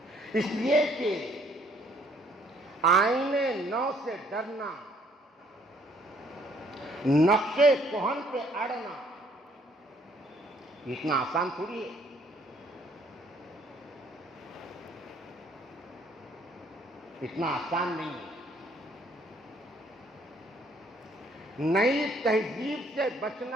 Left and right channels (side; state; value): both; normal; correlation 0.64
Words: اس لیے کہ آئینے نو سے ڈرنا، نقشے کہن پہ اڑنا، اتنا آسان تھوڑی ہے. اتنا آسان نہیں ہے. نئی تہذیب سے